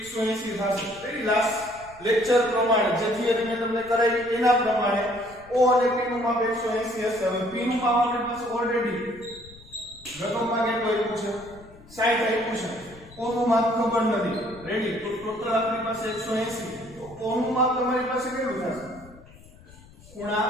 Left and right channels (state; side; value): noise; left; rumble, 22 dB below the sound